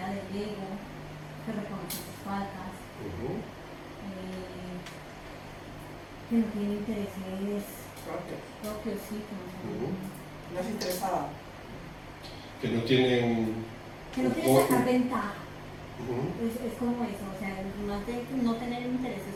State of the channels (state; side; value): identical; both; correlation 1.00